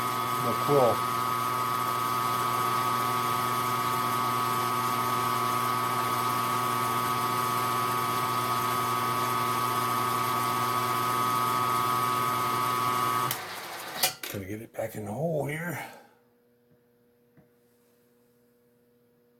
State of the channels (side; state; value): both; identical; correlation 1.00